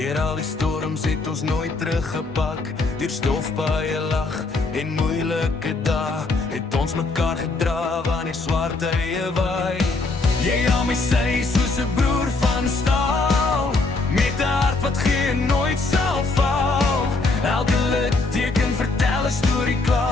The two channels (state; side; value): quieter; right; 3.6 dB